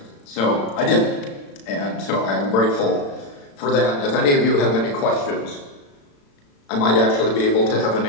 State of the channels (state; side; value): late; right; 35 ms